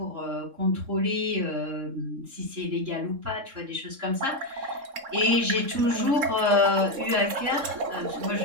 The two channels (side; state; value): left; late; 3.7 ms